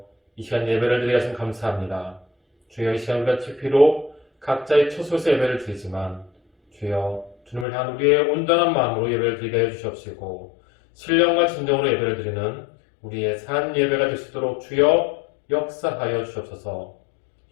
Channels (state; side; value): drops out; right; at 7.7 s